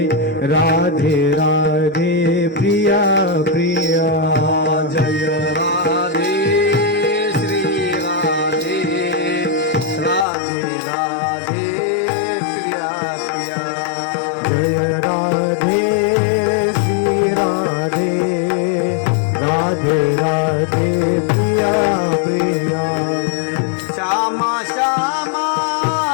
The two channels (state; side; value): drops out; right; at 10.2 s